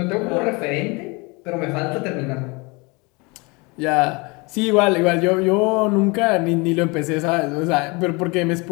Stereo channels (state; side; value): quieter; right; 27.6 dB